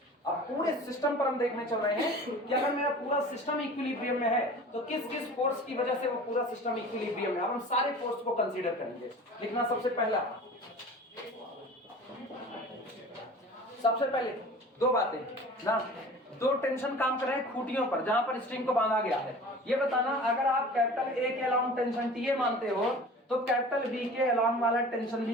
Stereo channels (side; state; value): both; normal; correlation 0.41